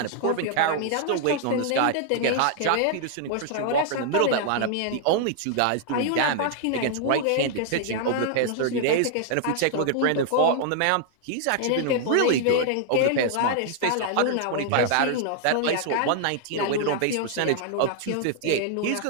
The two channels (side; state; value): both; different; correlation -0.01